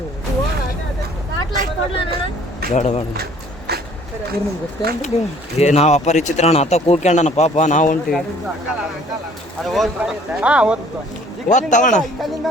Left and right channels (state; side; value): normal; both; correlation 0.56